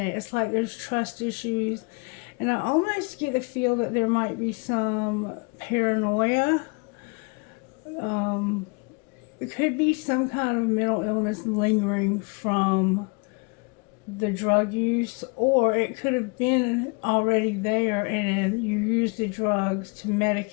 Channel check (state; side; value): quieter; right; 31.5 dB